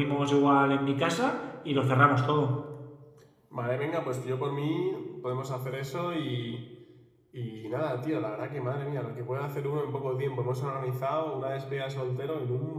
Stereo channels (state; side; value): identical; both; correlation 1.00